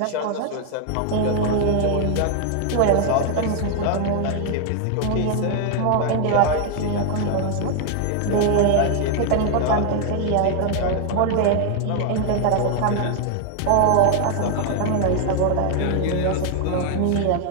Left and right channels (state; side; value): different; both; correlation 0.00